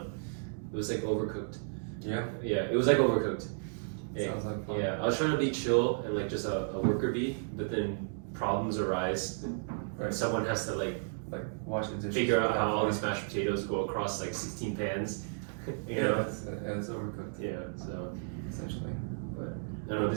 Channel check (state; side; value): silent; left; digital silence